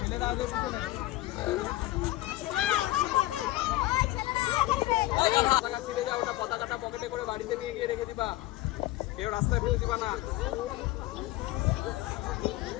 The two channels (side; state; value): right; quieter; 17.2 dB